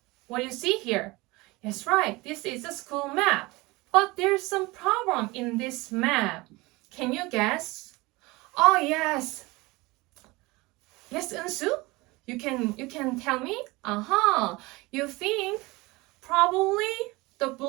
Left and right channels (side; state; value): left; quieter; 22.7 dB